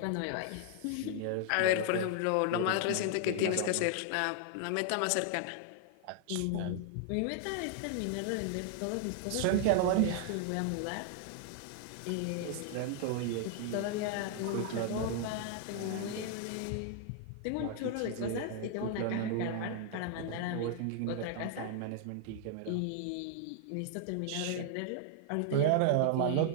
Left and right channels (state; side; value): different; both; correlation 0.00